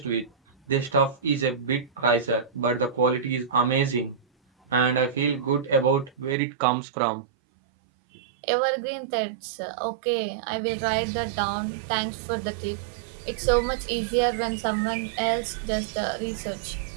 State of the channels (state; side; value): drops out; left; at 6.4 s